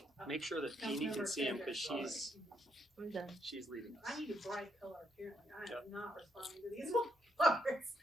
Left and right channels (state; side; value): normal; both; correlation 0.76